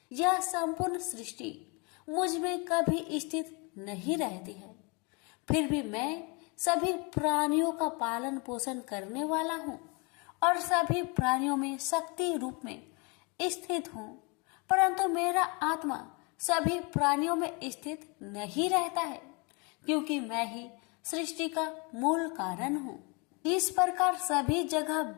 यह संपूर्ण सृष्टि मुझ में कभी स्थित नहीं रहती है, फिर भी मैं सभी प्राणियों का पालन पोषण करने वाला हूँ और सभी प्राणियों में शक्ति रूप में स्थित हूँ, परंतु मेरा आत्मा सभी प्राणियों में स्थित नहीं रहता है, क्योंकि मैं ही सृष्टि का मूल कारण हूँ। इस प्रकार सभी जगह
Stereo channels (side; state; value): right; quieter; 30.8 dB